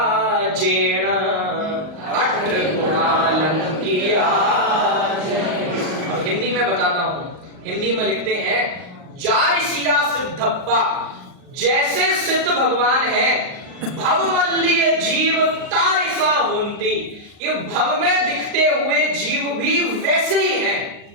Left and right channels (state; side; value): late; left; 39 ms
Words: जेण, अठ गुणालंकिया। अब हिंदी में बताता हूं, हिंदी में लिखते हैं जारिसिया सिद्धप्पा, जैसे सिद्ध भगवान है भवमल्लिय जीव तारिसा होंती, ये भव में दिखते हुए जीव भी वैसे ही हैं।